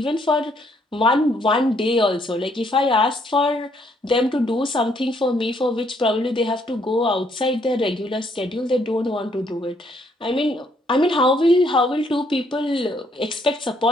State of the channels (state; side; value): normal; both; correlation 0.69